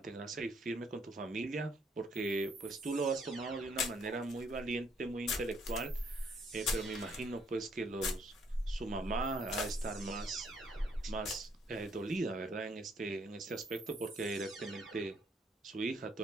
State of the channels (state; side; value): normal; both; correlation 0.68